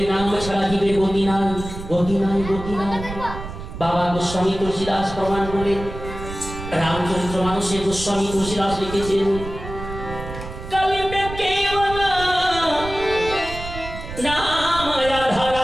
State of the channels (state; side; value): noise; right; rumble, 10 dB below the sound